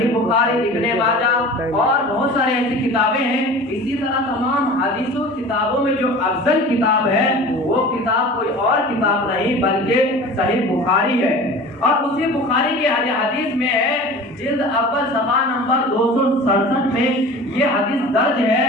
بخاری، ابن ماجہ اور بہت سارے ایسی کتابیں ہیں۔ اسی طرح تمام حدیثوں کتابوں میں جو افضل کتاب ہے وہ کتاب کوئی اور کتاب نہیں بلکہ صحیح بخاری ہے۔ اور اسی بخاری کے حدیث میں ہے، جلد اول صفحہ نمبر 267 میں یہ حدیث درج ہے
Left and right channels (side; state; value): both; normal; correlation 0.39